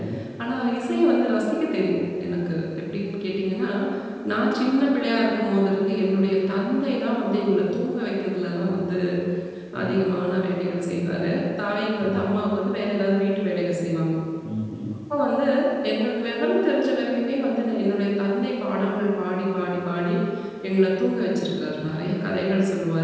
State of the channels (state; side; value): identical; both; correlation 1.00